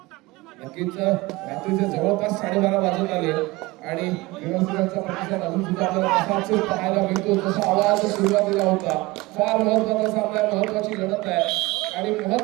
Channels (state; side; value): quieter; left; 21.5 dB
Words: नक्कीच रात्रीचे जवळपास 12:30 वाजत आले आणि व्यवस्थेचा प्रतिसाद अजून सुद्धा आपल्याला तसाच पाहायला मिळतो जसा आवाज सुरुवातीला होता. फार महत्त्वाचा सामना, महत्त्वाची लढत आहे आणि